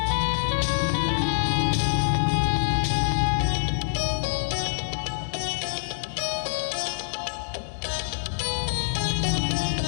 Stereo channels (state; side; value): silent; right; digital silence